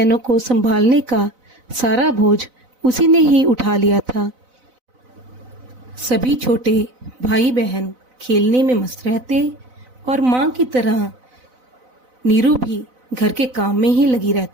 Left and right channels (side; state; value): left; late; 4.0 ms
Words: को संभालने का सारा बोझ उसी ने ही उठा लिया था। सभी छोटे भाई बहन खेलने में मस्त रहते और माँ की तरह नीरू भी घर के काम में ही लगी